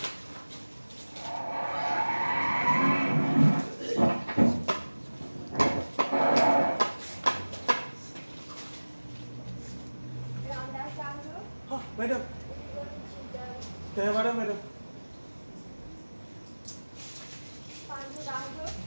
మేడం దయవాడా మేడం.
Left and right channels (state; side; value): inverted; both; correlation -1.00